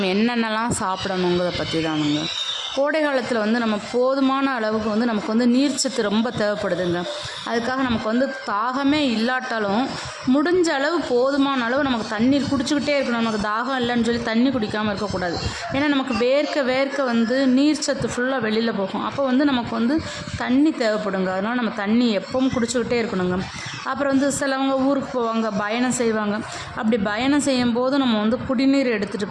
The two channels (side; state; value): both; identical; correlation 1.00